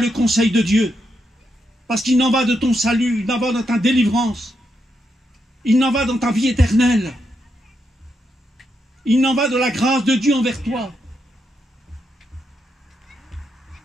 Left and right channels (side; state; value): both; normal; correlation 0.82